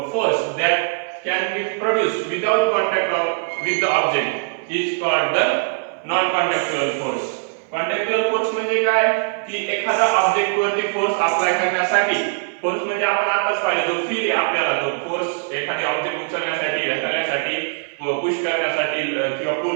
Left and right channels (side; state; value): left; silent; 60 dB below the other